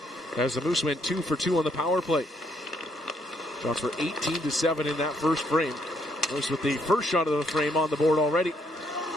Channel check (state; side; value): normal; both; correlation 0.72